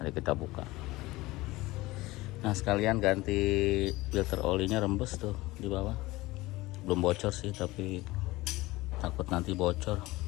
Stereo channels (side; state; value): right; quieter; 19.8 dB